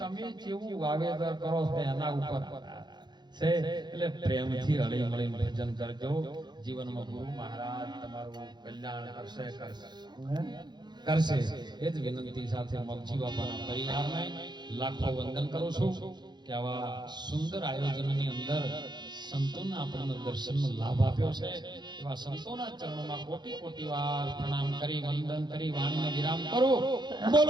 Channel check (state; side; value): late; left; 0.21 ms